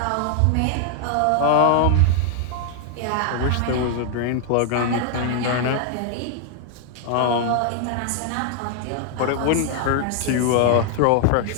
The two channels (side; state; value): both; different; correlation 0.00